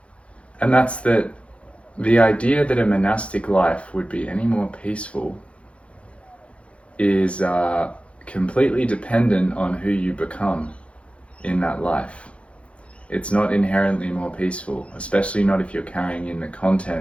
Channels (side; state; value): right; late; 0.061 ms